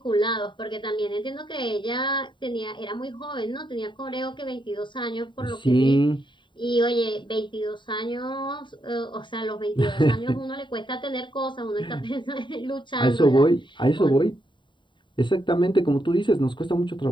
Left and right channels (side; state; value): right; late; 0.23 ms